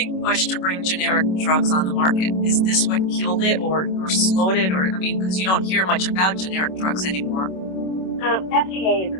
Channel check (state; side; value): late; right; 26 ms